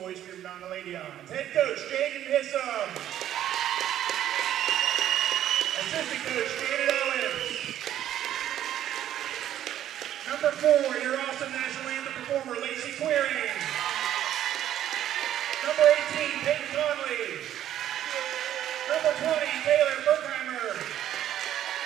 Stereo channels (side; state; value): left; quieter; 11.5 dB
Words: noise for your Madonna Lady Arms. Head coach, Jaden Hissam. Assistant coach, Janet Owens. Number 4, your awesome national anthem performer, Lacey Queering. Number 18, Peyton Conley. Number 20, Taylor Berkheimer.